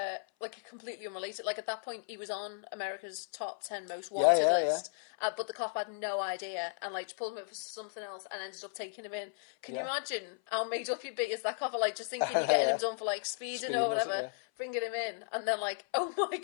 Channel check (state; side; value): silent; right; 54 dB below the other